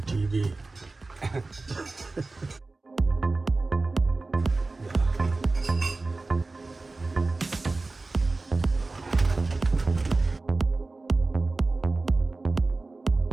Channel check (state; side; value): quieter; left; 3.4 dB